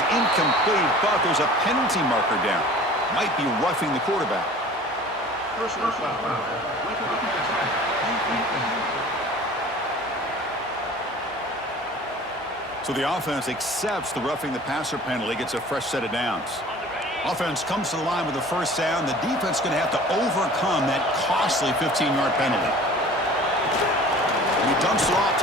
incomplete, but there's a penalty marker down. Might be roughing the quarterback. So the offense accepts the roughing the passer penalty, gets a fresh set of downs. Offense comes to the line with the first down. The defense is going to have to overcome that costly 15-yard penalty. And he dumps it off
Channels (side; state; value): both; normal; correlation 0.45